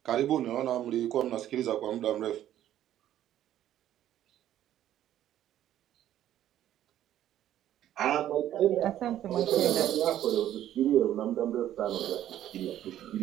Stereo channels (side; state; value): left; quieter; 12.0 dB